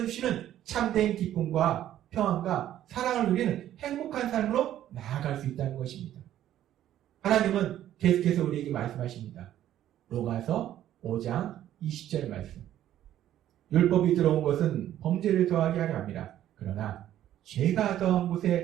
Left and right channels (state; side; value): quieter; left; 12.1 dB